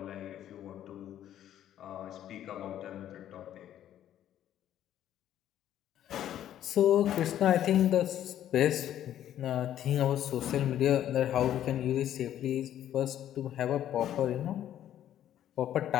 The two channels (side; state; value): right; quieter; 11.3 dB